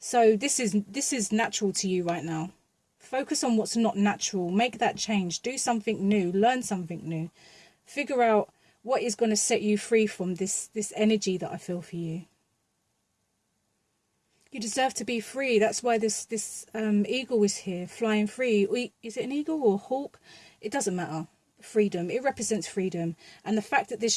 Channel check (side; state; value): both; identical; correlation 1.00